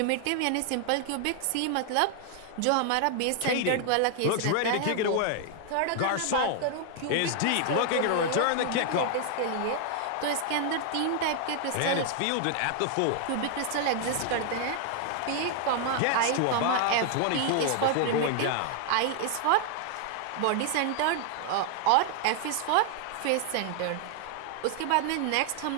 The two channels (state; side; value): different; both; correlation 0.00